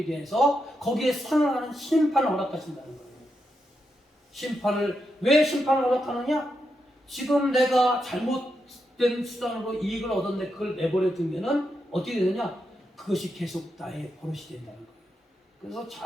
사랑하는 심판을 허락하신다는 거예요. 왜 심판을 허락하느냐? 지금 내가 잘못된 수단으로 이익을 얻었는데 그걸 내버려 두면은 어떻게 되느냐? 그것이 계속 나의 버릇이 된다는 거예요. 그래서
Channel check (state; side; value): normal; both; correlation 0.84